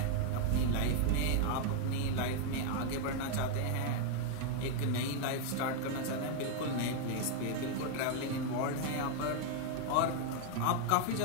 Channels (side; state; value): both; different; correlation 0.00